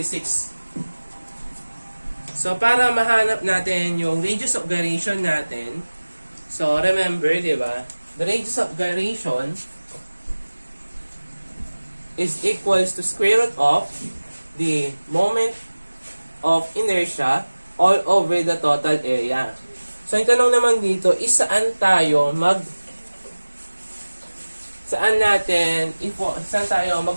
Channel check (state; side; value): inverted; both; correlation -1.00